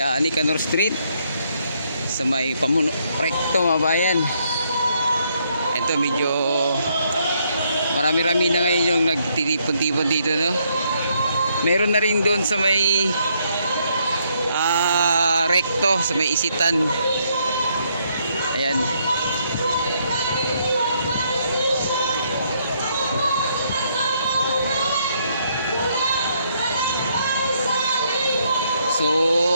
Nicanor Street, sa may Pamuno Recto mga bayan. Ito medyo marami-rami na ngayon yung nagtitipon-tipon dito, no? Meron na rin doon sa may Recto, sa may Isitan. Ayan.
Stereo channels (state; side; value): inverted; both; correlation -0.73